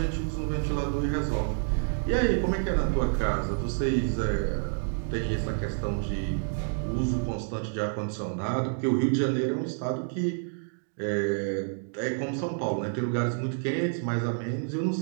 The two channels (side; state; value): left; silent; digital silence